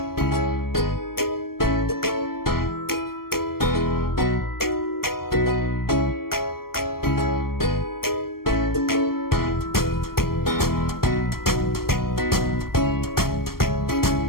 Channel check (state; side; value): late; right; 0.93 ms